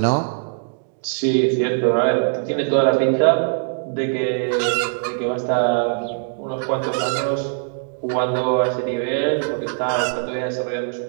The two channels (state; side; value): silent; left; digital silence